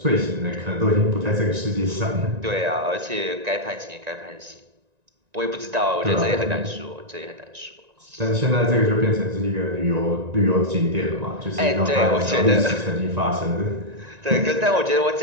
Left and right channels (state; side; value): late; left; 1.9 ms